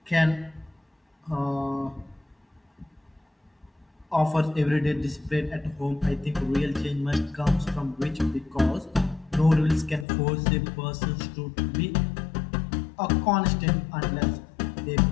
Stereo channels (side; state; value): right; drops out; at 10.1 s